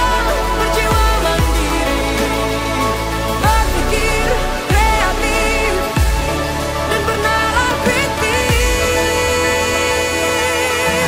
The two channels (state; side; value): identical; both; correlation 1.00